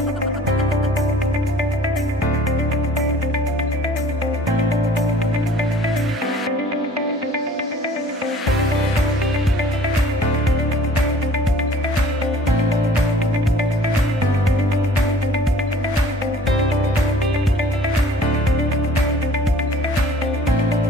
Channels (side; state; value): both; normal; correlation 0.50